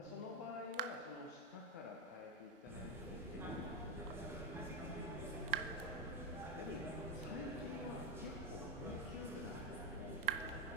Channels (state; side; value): normal; both; correlation 0.07